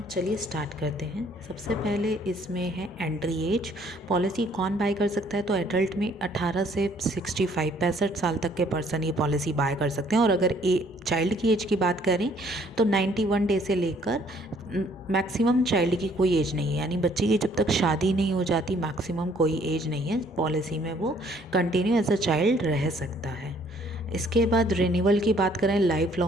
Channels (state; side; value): normal; both; correlation 0.62